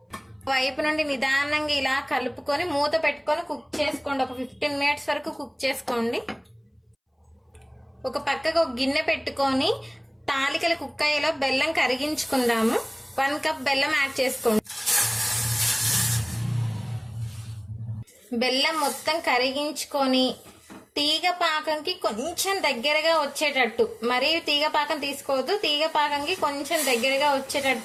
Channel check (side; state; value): both; identical; correlation 1.00